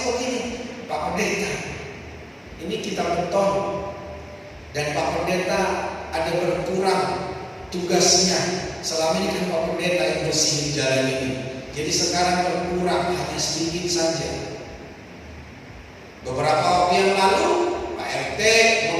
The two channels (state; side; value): identical; both; correlation 1.00